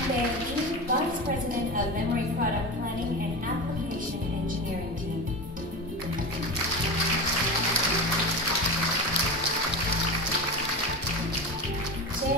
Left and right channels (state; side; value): normal; both; correlation 0.25